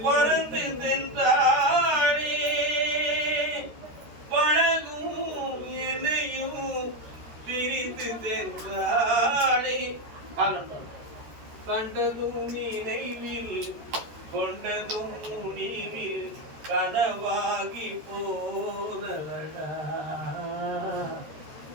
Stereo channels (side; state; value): left; late; 13 ms